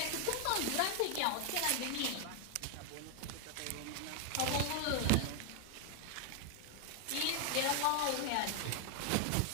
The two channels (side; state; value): both; different; correlation 0.00